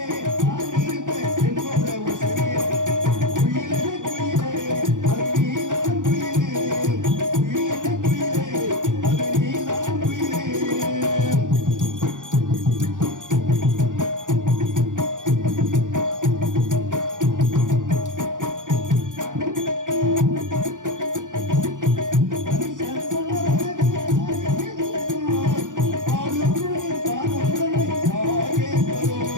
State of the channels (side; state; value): left; late; 0.87 ms